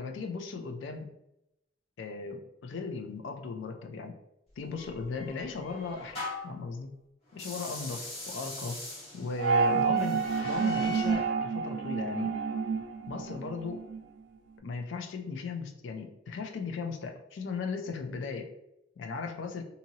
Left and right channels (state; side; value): normal; both; correlation 0.04